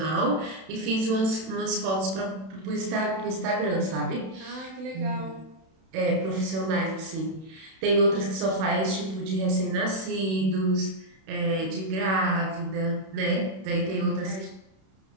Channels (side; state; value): left; late; 31 ms